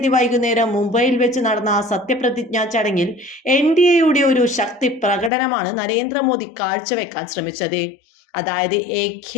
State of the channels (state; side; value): drops out; right; at 5.3 s